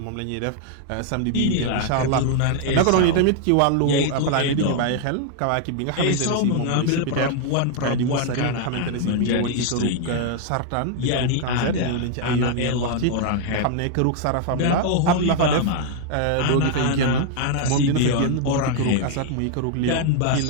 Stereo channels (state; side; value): different; both; correlation 0.00